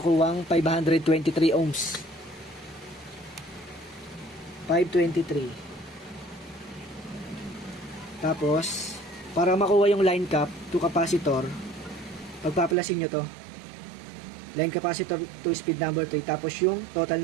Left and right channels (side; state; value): left; drops out; at 12.8 s